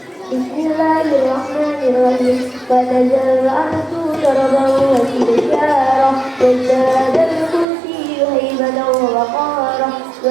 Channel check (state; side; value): drops out; left; at 7.7 s